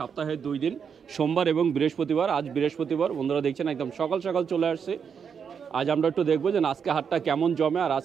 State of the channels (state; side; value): quieter; left; 6.9 dB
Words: 2 দিন, সোমবার এবং বৃহস্পতিবার। আজ বৃহস্পতিবার, বন্ধুরা দেখছেন একদম সকাল সকাল চলে আসছি। আজ আমরা একটু দেখবো যে আজকে হাটটা কেমন জমে, আর